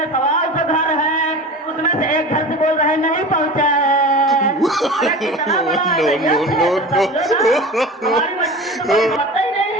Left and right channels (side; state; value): both; normal; correlation 0.33